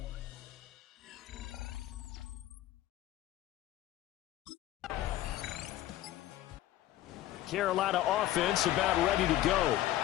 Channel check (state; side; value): quieter; right; 14.3 dB